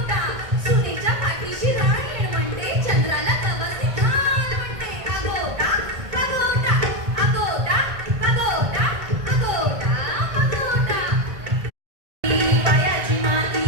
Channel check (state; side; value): late; left; 1.6 ms